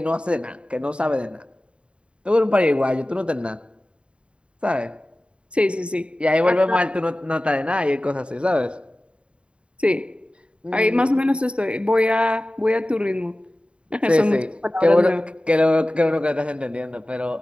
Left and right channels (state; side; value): late; left; 0.057 ms